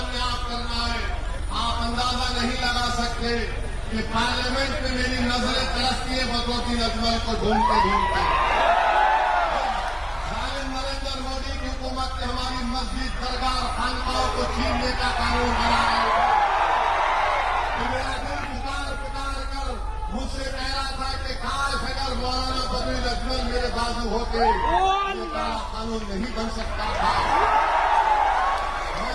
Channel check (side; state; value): both; identical; correlation 1.00